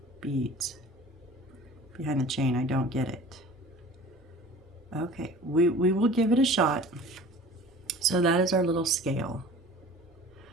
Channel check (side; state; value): both; normal; correlation 0.44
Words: beads behind the chain. I don't get it. Okay, we will give it a shot. So that is our little scale.